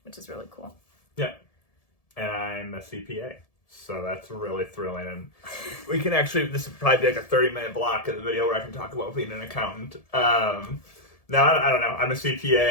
which is really cool. Yeah. And I'm a CPA, so that's really thrilling. And we can actually, this would probably be like a 30-minute block of the video where I can talk about being an accountant. No, I don't know. I'm a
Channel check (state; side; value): late; right; 1.7 ms